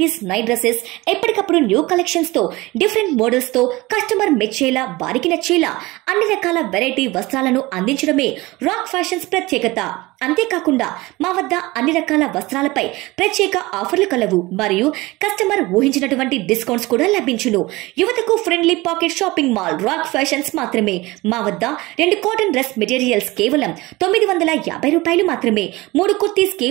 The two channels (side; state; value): left; quieter; 20.9 dB